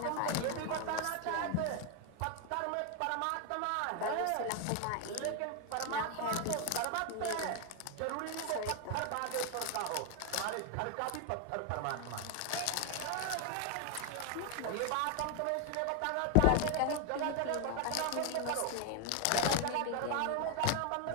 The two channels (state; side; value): different; both; correlation 0.01